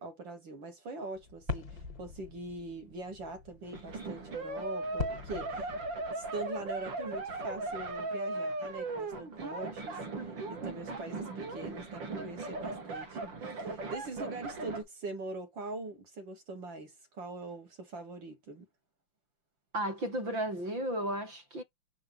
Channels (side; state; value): left; late; 5.8 ms